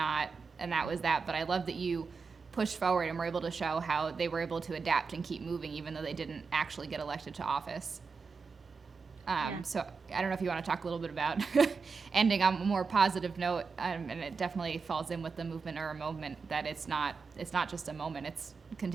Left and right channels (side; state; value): left; quieter; 5.0 dB